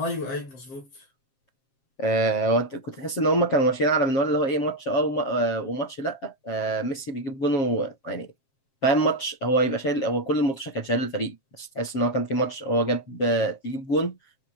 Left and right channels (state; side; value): late; right; 7.4 ms